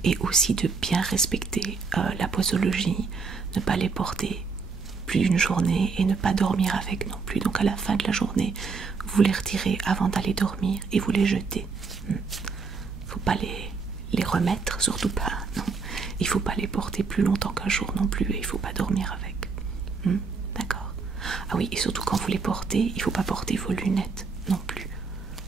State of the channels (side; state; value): left; quieter; 4.8 dB